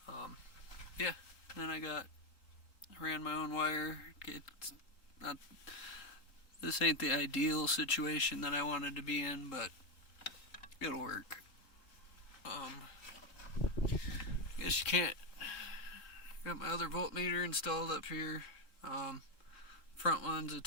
Yeah, then I ran my own wire. This ain't the ideal situation that I wanted to be in, but it'll work. I guess you can't. Got my other voltmeter installed up here. Front one's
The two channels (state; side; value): late; right; 3.7 ms